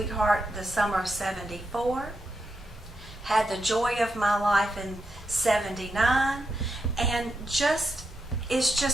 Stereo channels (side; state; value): both; normal; correlation 0.84